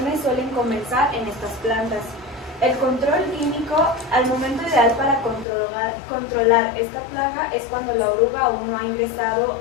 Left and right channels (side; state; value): right; drops out; at 5.5 s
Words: suelen comenzar en estas plantas. El control químico, al momento ideal para controlar esta plaga es cuando la oruga aún no ha ingresado